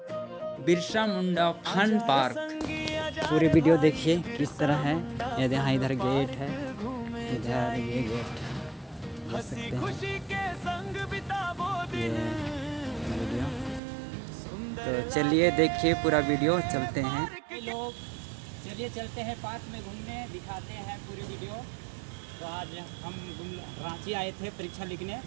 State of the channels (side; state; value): left; drops out; at 13.8 s